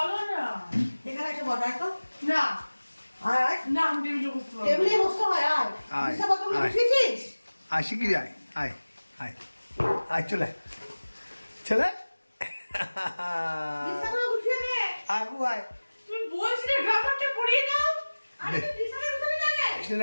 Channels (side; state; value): both; inverted; correlation -1.00